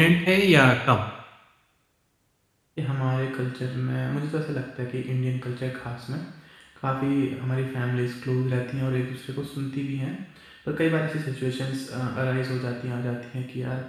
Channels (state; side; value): identical; both; correlation 1.00